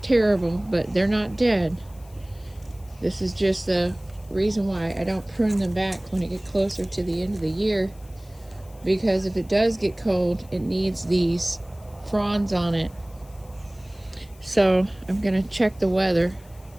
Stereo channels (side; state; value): left; noise; hiss, 27 dB below the sound